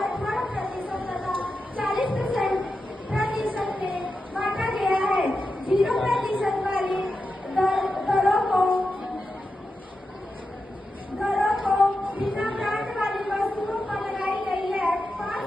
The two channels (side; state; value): both; normal; correlation 0.89